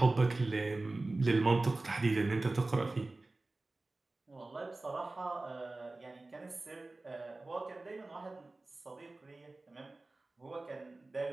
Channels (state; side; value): quieter; left; 3.1 dB